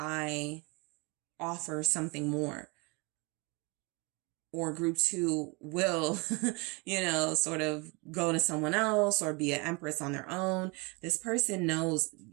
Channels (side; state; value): left; quieter; 28.9 dB